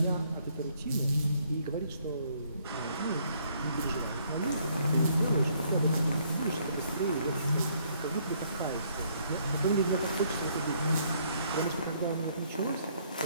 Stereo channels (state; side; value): inverted; both; correlation -0.67